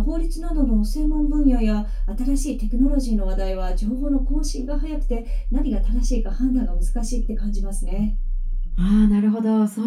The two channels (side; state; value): both; identical; correlation 1.00